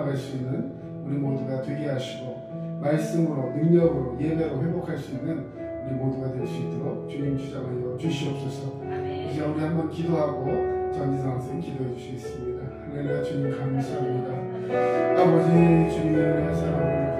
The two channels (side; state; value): both; identical; correlation 1.00